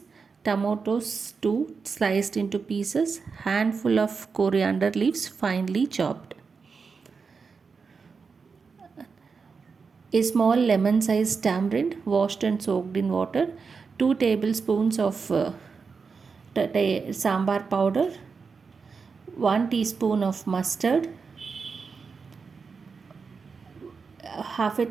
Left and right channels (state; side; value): quieter; left; 5.2 dB